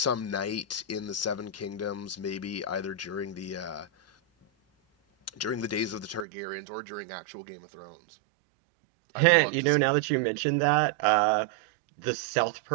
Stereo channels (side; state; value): left; drops out; at 6.2 s